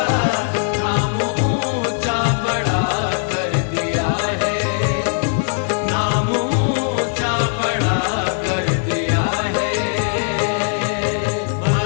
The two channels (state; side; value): silent; right; digital silence